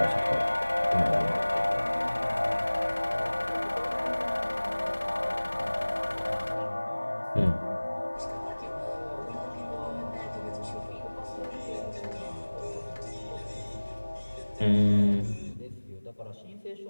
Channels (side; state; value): both; inverted; correlation -1.00